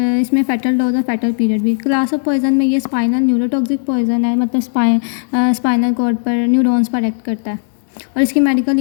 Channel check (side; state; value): right; silent; digital silence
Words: इसमें फेटल डोज और फेटल पीरियड भी। क्लास ऑफ पॉइजन में ये स्पाइनल न्यूरोटॉक्सिक पॉइजन है, मतलब स्पाइनल कॉर्ड पर न्यूरॉन्स पर एक्ट करता है। और इसकी मेडिकल